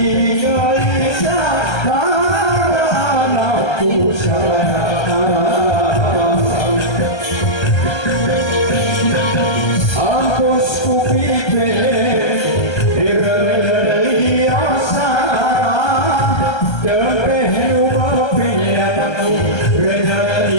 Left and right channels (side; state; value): right; late; 1.3 ms